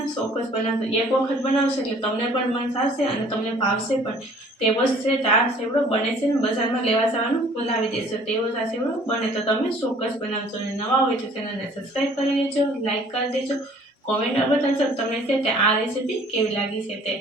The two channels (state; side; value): normal; both; correlation 0.54